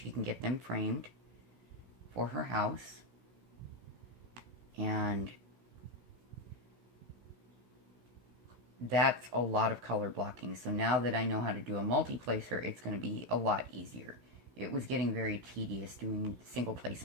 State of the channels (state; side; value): late; left; 16 ms